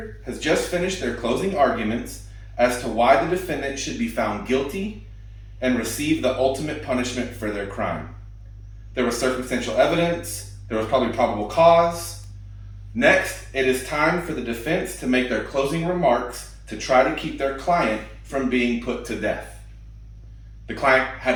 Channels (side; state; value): both; identical; correlation 1.00